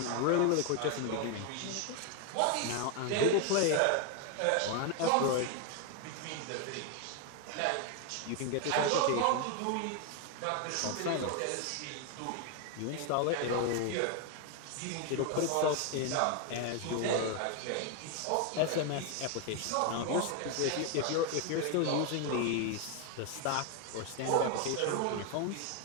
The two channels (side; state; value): both; different; correlation 0.01